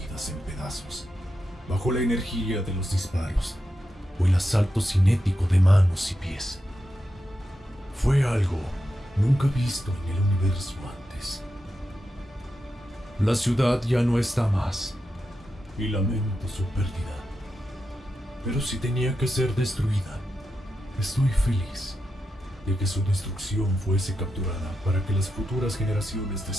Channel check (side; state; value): both; normal; correlation 0.88